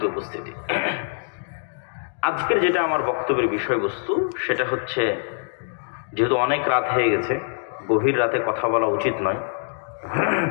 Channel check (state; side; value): silent; right; digital silence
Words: উপস্থিতি, আজকের যেটা আমার বক্তব্যের বিষয়বস্তু সেটা হচ্ছে, যেহেতু অনেক রাত হয়ে গেছে, গভীর রাতে কথা বলা উচিত নয়,